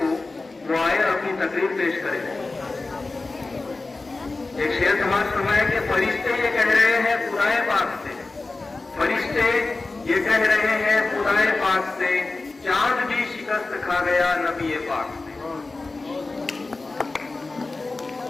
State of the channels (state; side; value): quieter; right; 3.5 dB